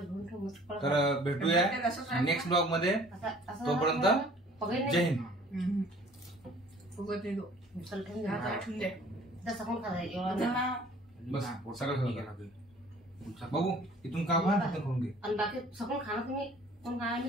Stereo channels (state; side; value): normal; both; correlation 0.52